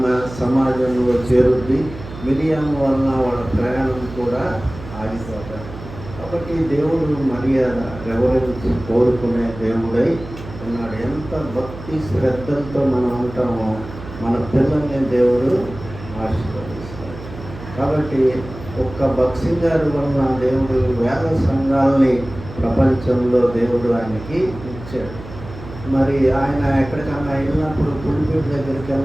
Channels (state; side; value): noise; right; hum, 13 dB below the sound